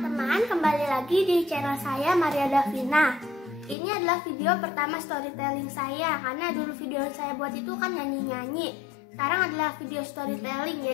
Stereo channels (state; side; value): drops out; right; at 3.8 s